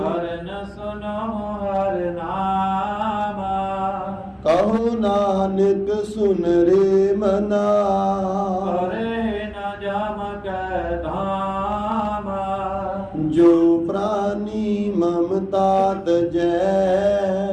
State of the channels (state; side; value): identical; both; correlation 1.00